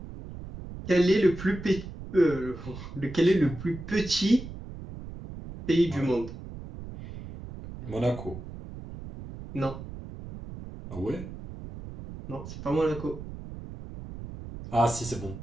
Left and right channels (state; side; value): noise; right; rumble, 12 dB below the sound